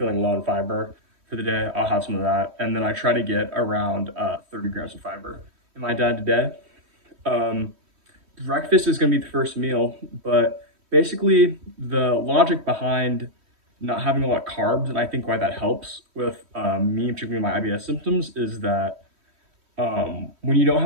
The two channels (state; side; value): late; left; 3.1 ms